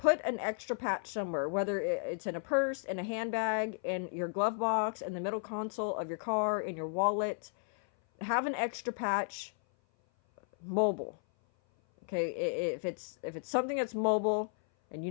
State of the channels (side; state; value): right; silent; 55 dB below the other